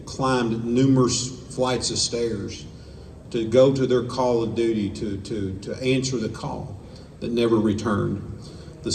climbed numerous flights of stairs to go to their call of duty, to answer the call that never returned. The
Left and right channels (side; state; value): both; identical; correlation 1.00